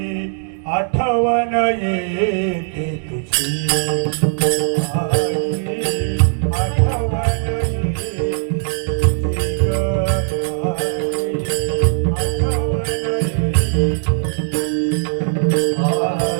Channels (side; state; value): left; silent; digital silence